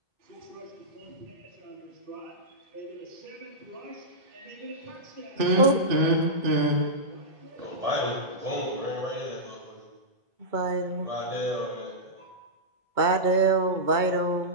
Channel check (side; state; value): left; late; 2.2 ms